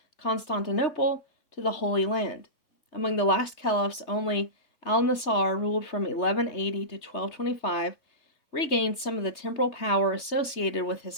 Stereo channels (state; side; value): late; right; 3.1 ms